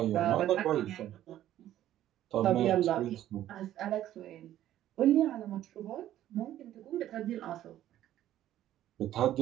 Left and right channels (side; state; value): left; quieter; 12.6 dB